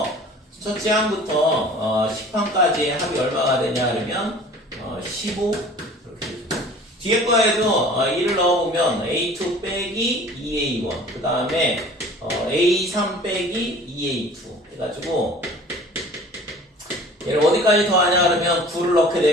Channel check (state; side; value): normal; both; correlation 0.46